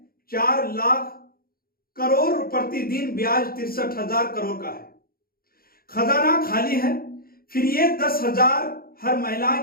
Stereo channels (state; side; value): late; right; 0.43 ms